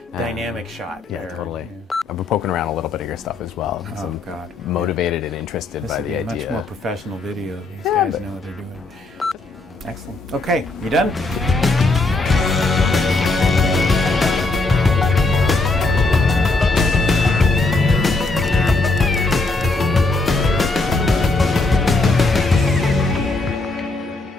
Dynamic shot. Yeah, there. totally. I've been poking around a little bit of your stuff as well. Oh, So I'm God. motivated and interested This by would be the a much idea. more professional video. These guys know what they're doing. Excellent. Okay, you done?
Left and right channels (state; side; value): quieter; right; 3.3 dB